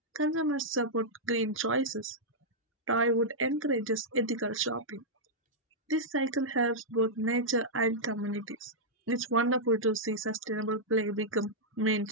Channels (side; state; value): both; normal; correlation -0.08